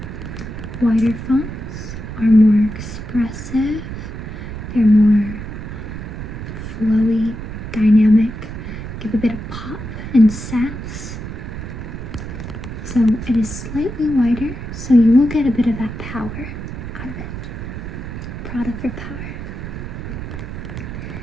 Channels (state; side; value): noise; right; rumble, 8 dB below the sound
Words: Wider fonts are more expressive, they're more flowy, dynamic, give a bit of pop and sass. So it is slightly wider, so you will get a bit of that power out of it. Product for power.